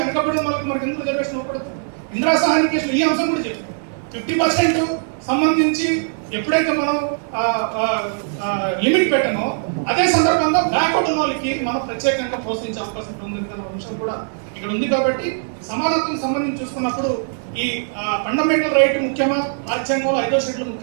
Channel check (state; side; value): silent; left; digital silence